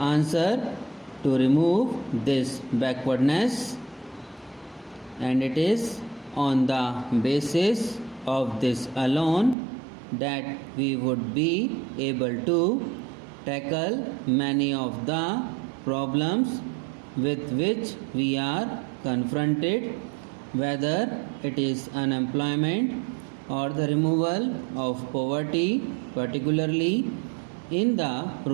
to remove this backwardness, and it is on the basis of this alone that we would be able to tackle many of the problems with which we are confronted, whether it is unemployment or the removal of poverty, particularly in the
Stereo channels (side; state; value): left; drops out; at 9.6 s